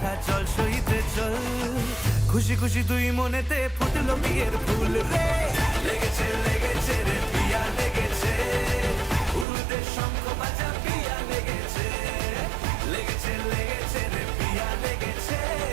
চল সইতে চল, খুশি খুশি দুই মনেতে ফুটলো বিয়ের ফুল রে, লেগেছে লেগেছে রে পিয়া লেগেছে, উড়তে শঙ্খ বাজা পিয়া লেগেছে, লেগেছে লেগেছে রে পিয়া লেগেছে,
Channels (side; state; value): left; drops out; at 9.5 s